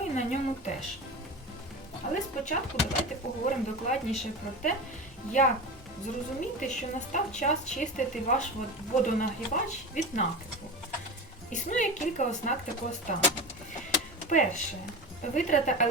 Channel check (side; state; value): both; normal; correlation 0.27